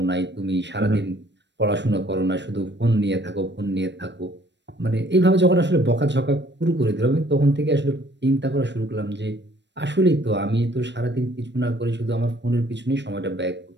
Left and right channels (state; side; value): late; left; 0.51 ms